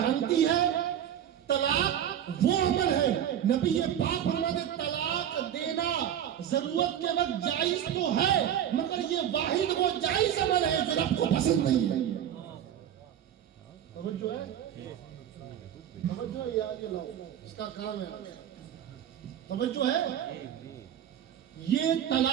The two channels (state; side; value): quieter; left; 10.1 dB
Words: ہے طلاق وہ عمل ہے، نبی پاک فرماتے طلاق دینا ضرورت کے وقت جائز تو ہے مگر یہ واحد وہ جائز عمل ہے جو رب کو پسند نہیں ہے. توجہ ہے، توجہ ہے، یاد لاؤ، اس کا کام ہے. توجہ ہے. یہ